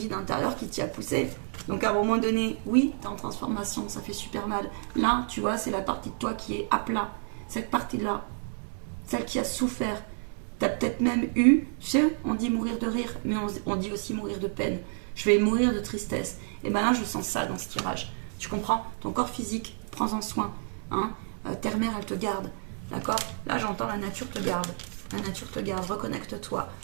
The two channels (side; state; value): left; silent; 58 dB below the other